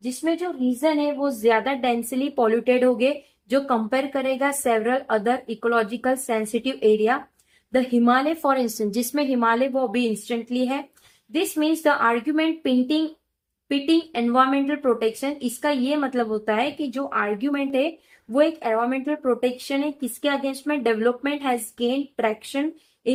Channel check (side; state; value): both; identical; correlation 1.00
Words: जिसमें जो रीजन है वो ज्यादा डेंसली पॉल्यूटेड हो गए जो कंपेयर करेगा several other ecological sensitive area. The Himalaya for instance, जिसमें हिमालय वो भी इंस्टेंटली है। This means the argument pitting environmental protection, इसका ये मतलब होता है कि जो आर्ग्यूमेंट है वो एक एनवायरमेंटल प्रोटेक्शन है, किसके अगेंस्ट में, development has gain traction